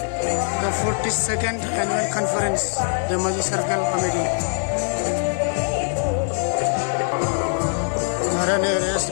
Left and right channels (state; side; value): silent; right; 59 dB below the other